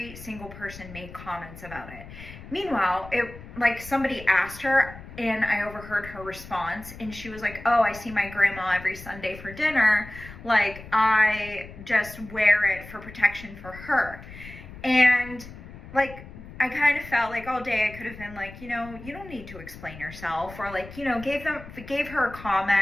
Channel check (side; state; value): left; noise; rumble, 15 dB below the sound